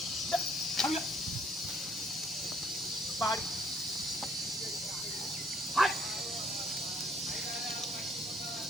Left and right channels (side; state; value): both; normal; correlation 0.64